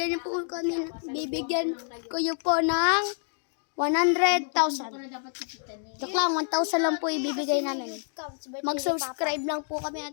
ko yun po ng 100,000. Joke lang, 1,000 lang po ibibigay namin. Mag-subscribe lang po kami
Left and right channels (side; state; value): right; silent; digital silence